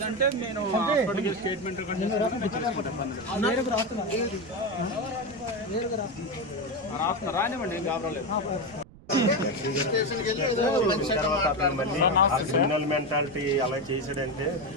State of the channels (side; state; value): right; noise; rumble, 22 dB below the sound